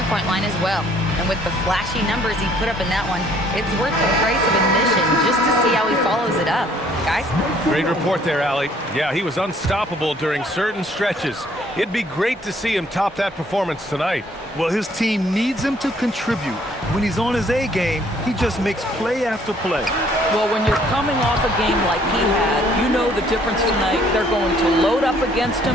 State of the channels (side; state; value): both; normal; correlation 0.61